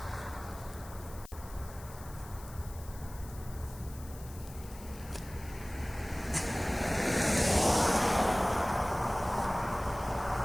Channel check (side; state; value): left; noise; hiss, 18 dB below the sound